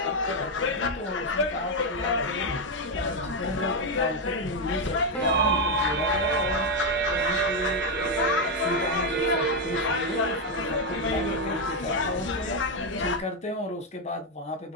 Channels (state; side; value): normal; both; correlation 0.05